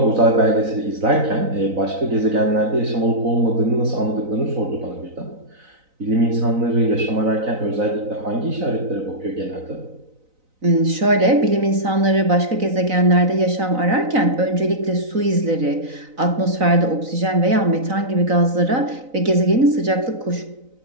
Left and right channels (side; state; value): left; late; 3.9 ms